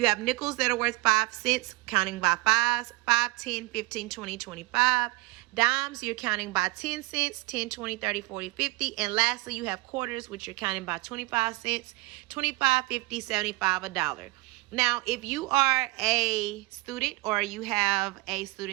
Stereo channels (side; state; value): left; quieter; 22.2 dB